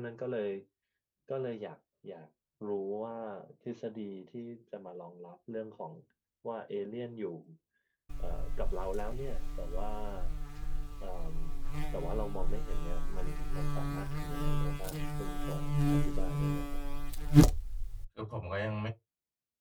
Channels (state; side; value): identical; both; correlation 1.00